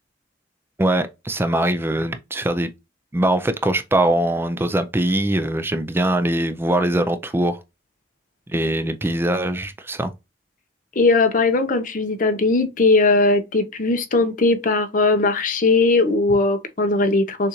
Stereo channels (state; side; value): normal; both; correlation 0.35